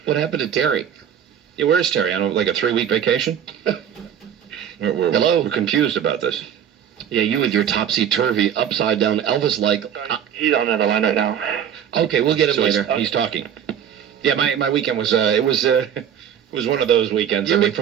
What happened to Terry? Yeah, where's Terry? On like a 3-week vacation? Hello? We're confused about this. Yeah, you with your topsy-turvy, upside-down Elvis-like... He's on another line right now. Okay, we'll get him So later. he's talking. Yeah, my weekend was it was one of those weekends. I mean,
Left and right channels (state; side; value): quieter; left; 9.1 dB